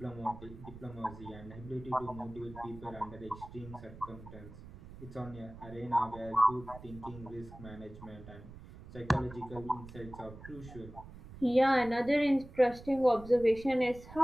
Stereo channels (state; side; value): noise; right; rumble, 16 dB below the sound